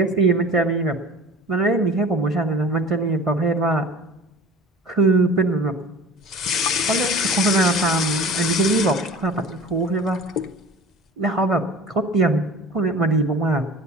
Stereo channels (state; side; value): normal; both; correlation 0.40